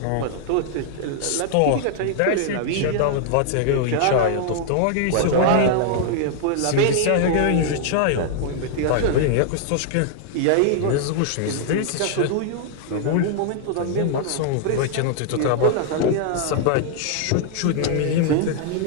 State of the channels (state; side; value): different; both; correlation -0.01